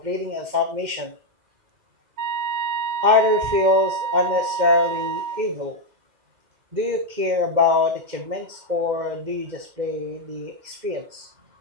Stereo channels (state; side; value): late; left; 2.1 ms